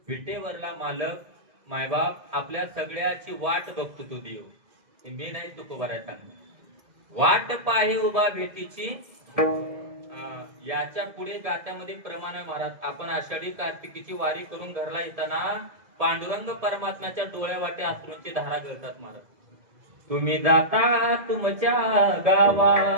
विटेवरला मालक मायबाप आपल्या सगळ्याची वाट बघतो तो देव. मी नाही तुकोबाराय सांगणार. वाट पाहे उभा भेटीची, याच्या पुढे गात्यामध्ये प्रमाण आहे महाराज. आपण आषाढी कार्तिकीची वारी करून घरला येताना पांडुरंग परमात्म्याच्या डोळ्या वाटे अश्रूंची धारा गळतात महाराज. तुम्ही जाता तुमच्या गावा,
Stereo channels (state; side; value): late; left; 2.0 ms